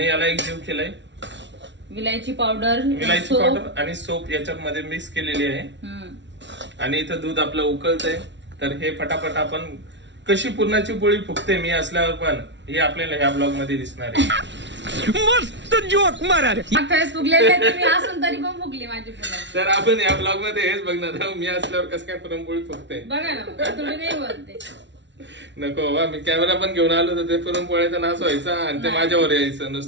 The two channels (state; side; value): late; left; 0.52 ms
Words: याला एक जीव केलाय. विलायची पावडर आणि सोप याच्यामध्ये मिक्स केलेली आहे. आणि इथं दूध आपलं उकळतंय. तर हे फटाफट आपण कशी पुरणाची पोळी फुगते मी असल्यावर पण, हे आपल्याला ह्या ब्लॉग मध्ये दिसणार आहे. मस्त जोक मारा रे. फुगलेले तुम्ही असून तरी पण फुगली माझी पुरण. तर आपण या ब्लॉग मध्ये हेच बघणार आहोत, मी असल्यावर कसं काय पुरणपोळी फुगते. बघा ना, तुम्ही नाही बोलते. नको बाबा, मी कॅमेरा पण घेऊन आलो तर ते पुरणपोळ्याचा नाश व्हायचा आणि ते माझ्यावर यायचं